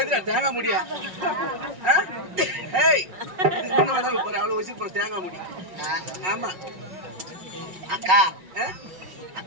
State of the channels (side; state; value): left; late; 5.5 ms